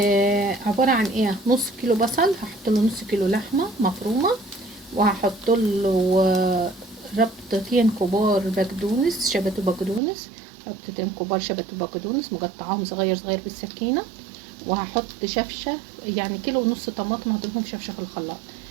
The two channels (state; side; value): drops out; left; at 10.0 s